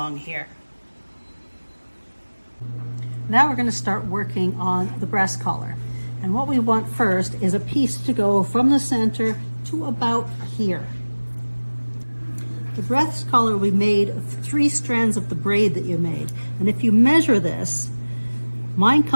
here. Now we're going to start working on the breast collar. And what we want first is a piece to go from the center to about here. The breast collar we made of 3 strands of the braid that you made. And if you measure this, mine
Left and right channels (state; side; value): inverted; both; correlation -1.00